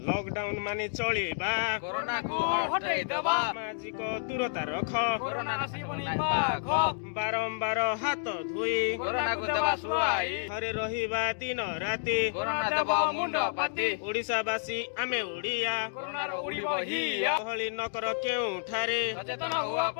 lockdown माने चलिबा corona को हटाई दबा सामाजिक दूरता रख कोरोना नसी पनि पाख बारंबार हाथ धुई कोरोना को दबा सुआई घरे रहिबा दिन राति कोरोना दबा मुंड पाती ओडिसावासी आमे ओडिया कोरोना रो उड़िबो हिया गहली नकर केउठारे सचेतन हुआ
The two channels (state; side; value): silent; right; digital silence